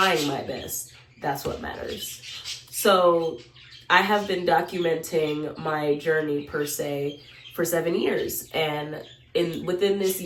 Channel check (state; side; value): identical; both; correlation 1.00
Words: my best, that's what matters. So I have been documenting my journey per se for 7 years. And within this